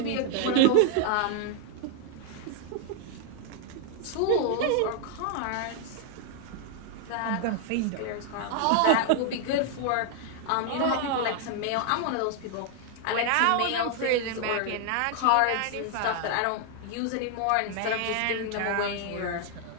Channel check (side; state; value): both; different; correlation 0.00